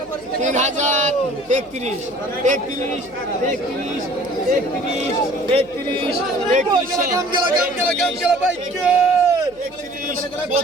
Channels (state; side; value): noise; left; hum, 26 dB below the sound